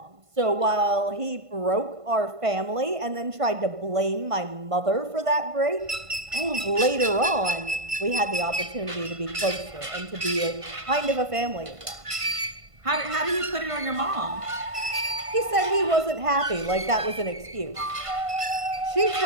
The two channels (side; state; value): left; late; 1.5 ms